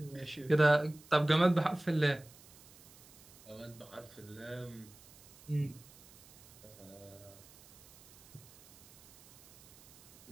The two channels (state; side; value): noise; right; hiss, 22 dB below the sound